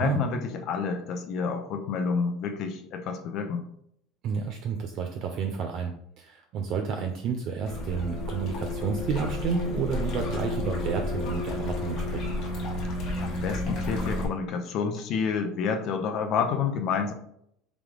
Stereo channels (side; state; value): both; normal; correlation 0.43